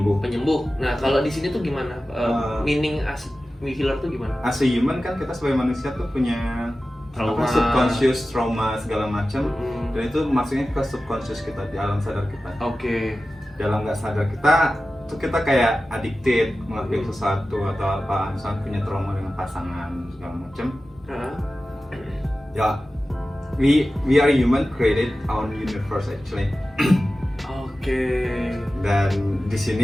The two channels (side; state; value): both; normal; correlation 0.95